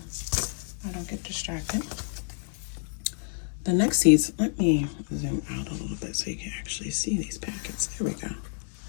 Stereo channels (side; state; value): right; silent; 57 dB below the other